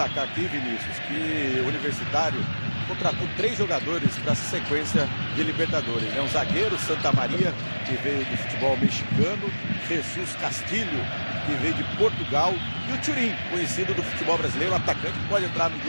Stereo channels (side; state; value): both; inverted; correlation -1.00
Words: aqui, Vinícius, que o Universitário contratou 3 jogadores para essa sequência de Libertadores. Um zagueiro, Santa Maria, que veio do futebol mexicano, Jesus Castilho, que veio de Portugal, e o Turim, conhecido do futebol brasileiro, o atacante que pode entrar no